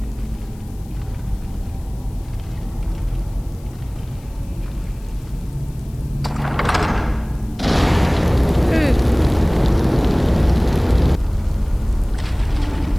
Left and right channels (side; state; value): left; noise; hiss, 27 dB below the sound